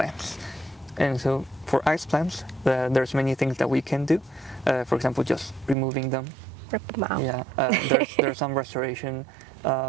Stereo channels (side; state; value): left; drops out; at 5.8 s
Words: And so for ice plants, there's many things that we can do. For example, just removing them. Rip them out. Yeah, there's some restoration